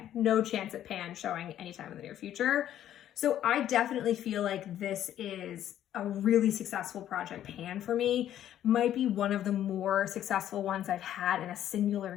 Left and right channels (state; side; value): quieter; right; 11.4 dB